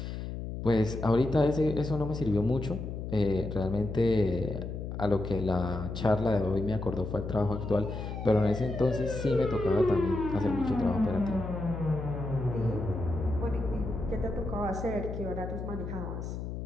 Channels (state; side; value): noise; left; hum, 6 dB below the sound